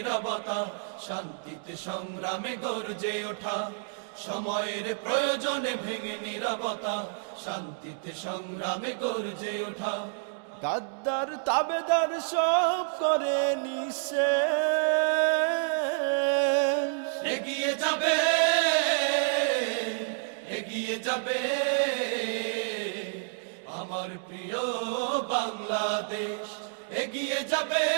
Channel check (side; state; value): left; silent; digital silence